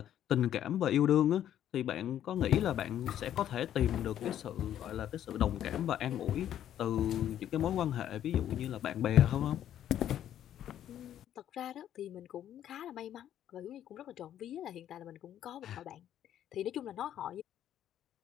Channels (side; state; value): right; quieter; 10.9 dB